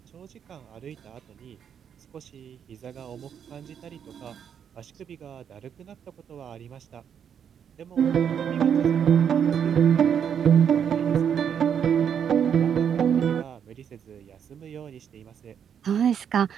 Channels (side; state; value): left; quieter; 8.1 dB